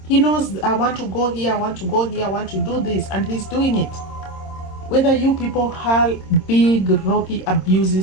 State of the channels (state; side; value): late; right; 26 ms